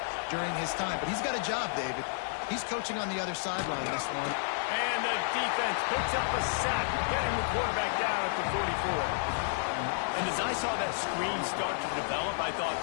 during his time. But he's got a job, David. He's coaching on the other sideline this one. And the defense picks up a sack, getting the quarterback down at the 44. And as I saw that screen start to develop, I thought,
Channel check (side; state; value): right; silent; digital silence